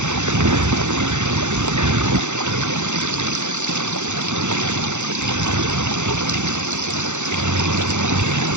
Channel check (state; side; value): late; left; 0.84 ms